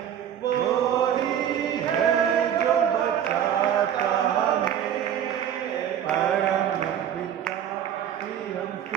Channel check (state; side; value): quieter; left; 9.6 dB